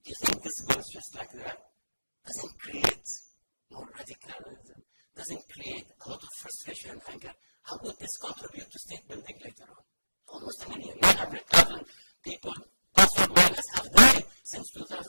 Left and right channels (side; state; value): both; inverted; correlation -1.00